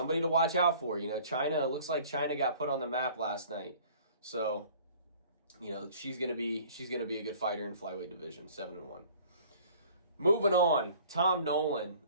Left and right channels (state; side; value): inverted; both; correlation -0.51